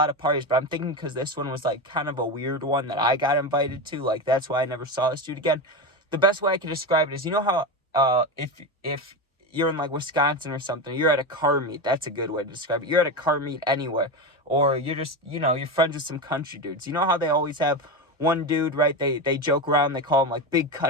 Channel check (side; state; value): both; normal; correlation 0.18